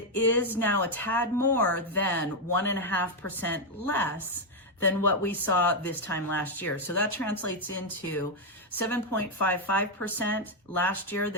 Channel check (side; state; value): both; normal; correlation 0.02